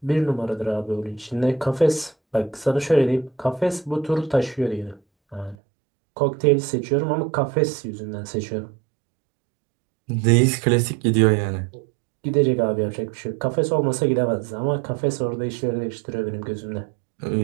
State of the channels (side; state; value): left; drops out; at 5.6 s